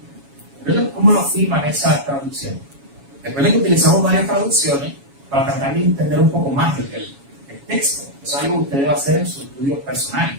Pero ¿cómo lo afirman esa traducción? Recuerden que utilizamos varias traducciones para tratar de entender un poco más el texto. Eso es algo que usted debe hacer en su estudio personal,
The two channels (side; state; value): left; late; 7.2 ms